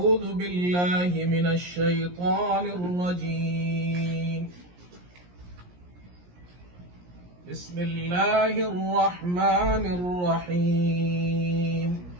بالله من الشيطان الرجيم. بسم الله الرحمن الرحيم.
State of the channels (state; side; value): late; left; 17 ms